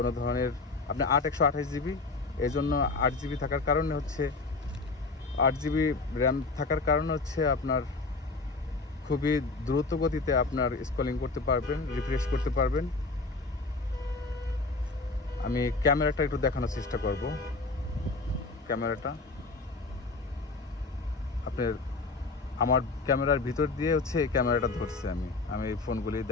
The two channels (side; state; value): right; quieter; 3.7 dB